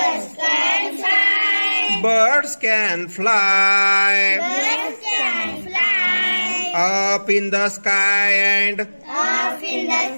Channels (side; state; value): both; inverted; correlation -1.00